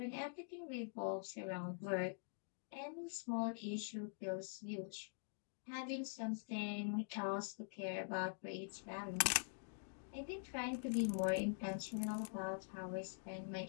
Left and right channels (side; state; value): right; silent; digital silence